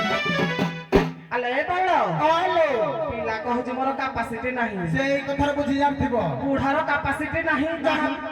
ନାରାୟଣେ ପିଲା କହୁଛି ମୋର କାପାସିଟି ନାହିଁ ସେଇ କଥାରେ ବୁଝି ଜାଣିଥିବ ବୁଢାର କାପାସିଟି ନାହିଁ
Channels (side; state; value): both; identical; correlation 1.00